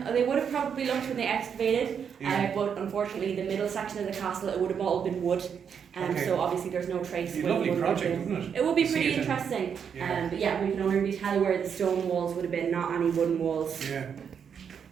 would have probably looked when they excavated, but unfortunately the middle section of the castle, it would have all been wood. Okay. So obviously there's no trace. It'd be a where the lovely wood would have project, been. wouldn't it? It would be See pretty it in- interesting. Yeah. But yeah, we can only really tell where the stone walls would have been, not any wooden walls. Yeah.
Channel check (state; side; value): quieter; left; 7.3 dB